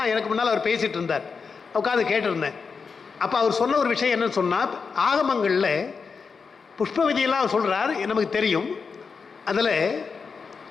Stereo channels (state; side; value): quieter; right; 5.3 dB